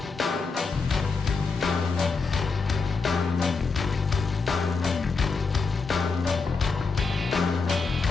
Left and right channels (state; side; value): quieter; right; 4.5 dB